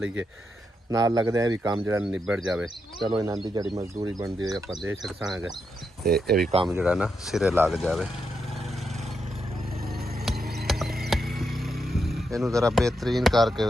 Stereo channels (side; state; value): both; normal; correlation 0.83